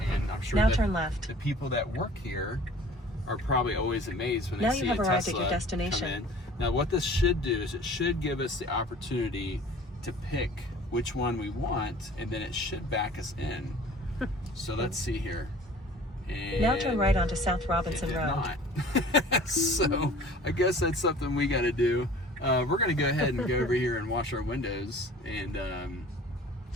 And I'm sure now turn left. The people that work here are probably always amazed when now they see you have a arrived Tesla at your destination. come in. Now what this should do is it should give us the opportunity to pick which one we want, and then it should back us in. So let's see here. And now turn right onto South Robinson Road. Not. So I guess that's something we got to do. We're going to go ahead and go over here and wash our windows, and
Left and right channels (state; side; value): normal; both; correlation 0.47